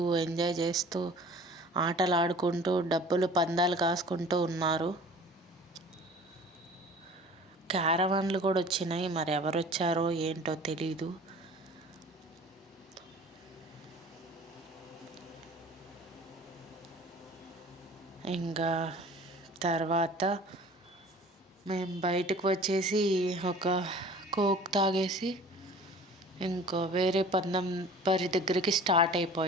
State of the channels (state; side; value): normal; both; correlation 0.45